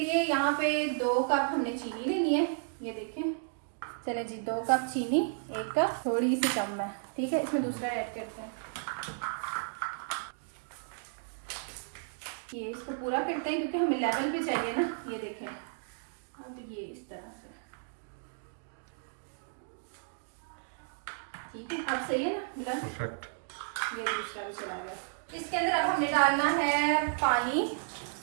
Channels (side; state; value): left; silent; digital silence